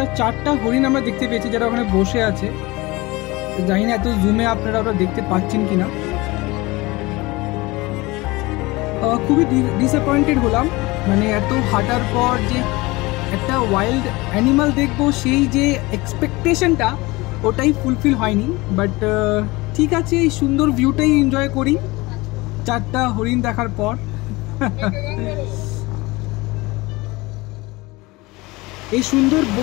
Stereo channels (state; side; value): quieter; right; 22.3 dB